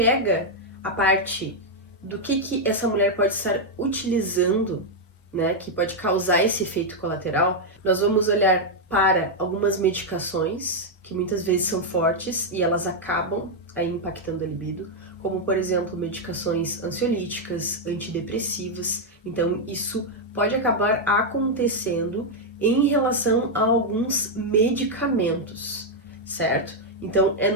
a parte do que essa mulher pode estar utilizando, né, que pode causar esse efeito colateral, nós vamos olhar para algumas medicações que muitas vezes são fortes e elas acabam aí impactando a libido, como por exemplo medicações ansiolíticas, antidepressivas. Então isso pode acabar acontecendo em relação a alguns medicamentos, certo? Então é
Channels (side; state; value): both; normal; correlation 0.00